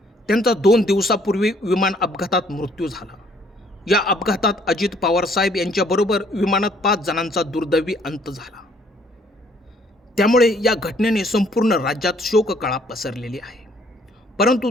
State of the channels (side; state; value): both; normal; correlation 0.63